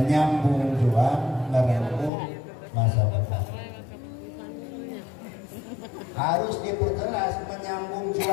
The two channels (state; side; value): drops out; right; at 2.1 s